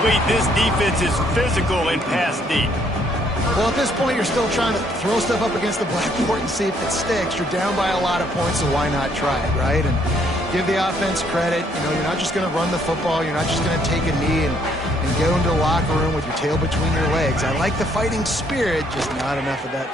This defense is physical and pass deep. Well, at this point, you're still trying to throw stuff up against the blackboard and see if it sticks. You're down by a lot of points, so why not try it, right? And give the offense credit. You know, you're not just going to run the football. You're not just going to take a knee and go into the locker room with your tail between your legs. I like the fighting spirit, just not enough of that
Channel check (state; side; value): normal; both; correlation 0.68